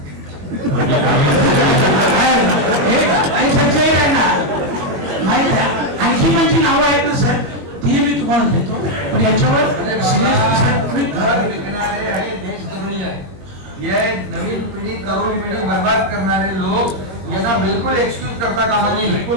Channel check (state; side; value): late; left; 21 ms